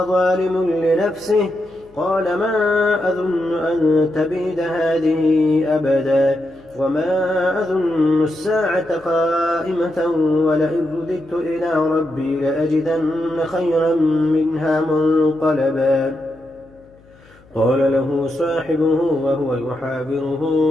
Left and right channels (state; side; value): noise; left; hum, 28 dB below the sound